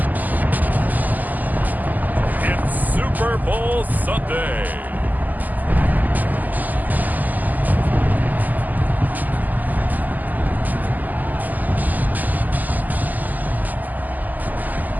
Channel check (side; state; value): left; late; 0.082 ms